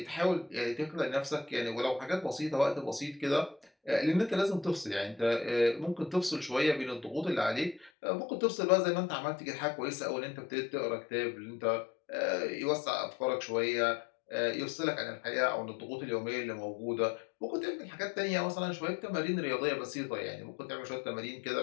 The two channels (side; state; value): right; drops out; at 7.9 s